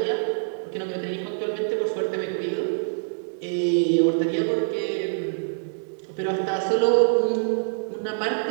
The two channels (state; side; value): silent; left; 62 dB below the other